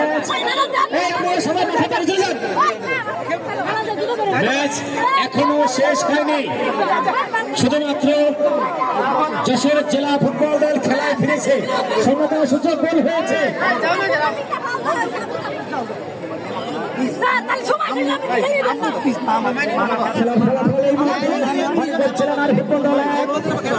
এই আপনারা সবাই মাঠে বেরিয়ে যান। ম্যাচ এখনো শেষ হয়নি। শুধুমাত্র যশোর জেলা ফুটবল দল খেলায় ফিরেছে। সমতা সূচক গোল হয়েছে। জেলা নারী ফুটবল দল 1,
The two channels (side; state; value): both; identical; correlation 1.00